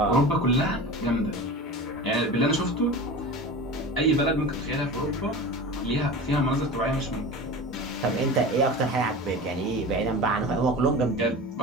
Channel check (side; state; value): both; normal; correlation 0.32